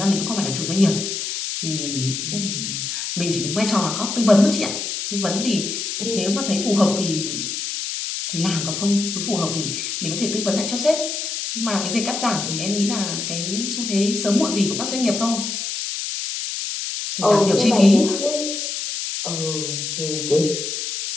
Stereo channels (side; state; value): left; noise; hiss, 4 dB below the sound